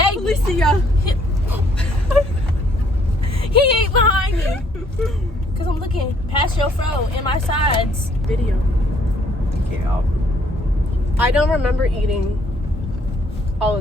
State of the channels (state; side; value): normal; both; correlation 0.65